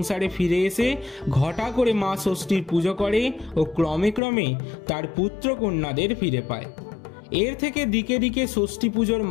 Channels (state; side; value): drops out; right; at 4.2 s